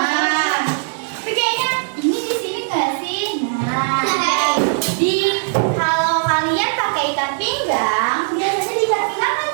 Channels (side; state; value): left; silent; 57 dB below the other